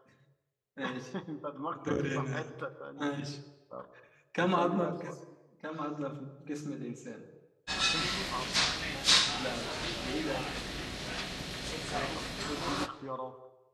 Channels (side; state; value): both; identical; correlation 1.00